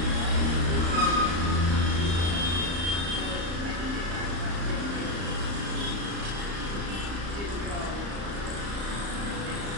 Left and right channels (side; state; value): left; late; 35 ms